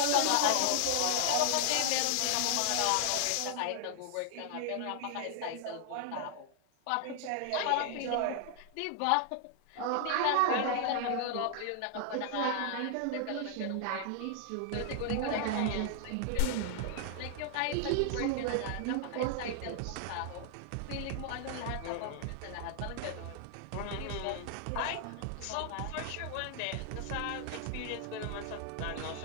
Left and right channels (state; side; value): different; both; correlation 0.00